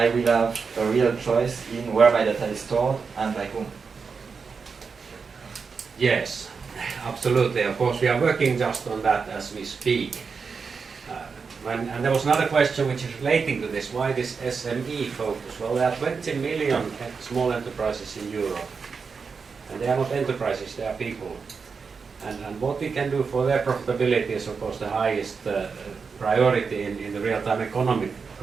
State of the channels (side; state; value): left; quieter; 5.3 dB